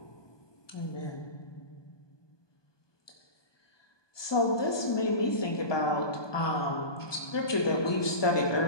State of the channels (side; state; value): right; late; 1.2 ms